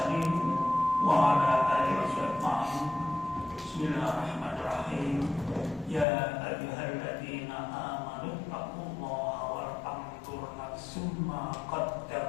wa ala alihi washabbihi. Bismillahirrahmanirrahim. Ya ayyuhalladzina amanu taqullaha wal tanzur nafsum ma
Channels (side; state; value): right; drops out; at 6.1 s